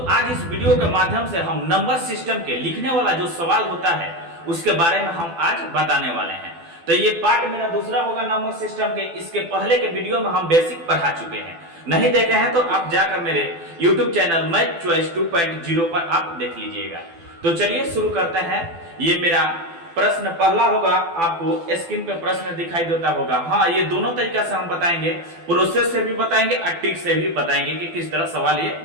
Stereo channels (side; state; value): left; late; 12 ms